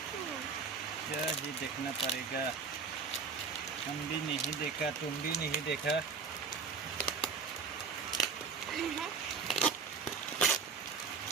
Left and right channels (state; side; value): quieter; left; 5.3 dB